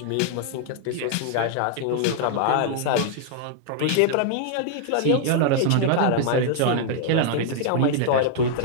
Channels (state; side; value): different; both; correlation -0.01